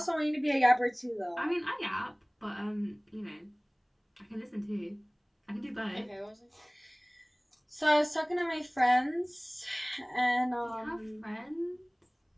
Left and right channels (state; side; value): identical; both; correlation 1.00